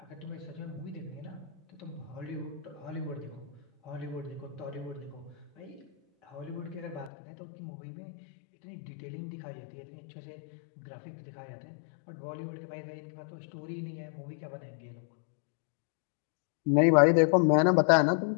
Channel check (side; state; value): right; drops out; at 7.1 s